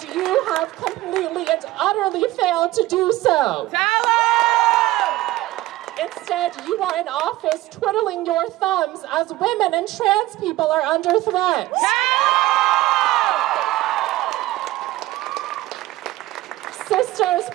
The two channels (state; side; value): quieter; left; 17.1 dB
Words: you have completely and utterly failed to do so. Instead, you are in office twiddling your thumbs as women and trans people are under threat. Sisters,